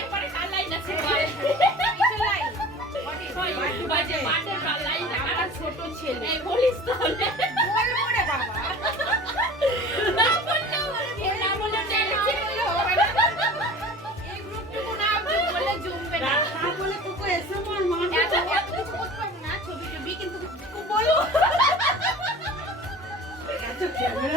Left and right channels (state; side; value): normal; both; correlation 0.40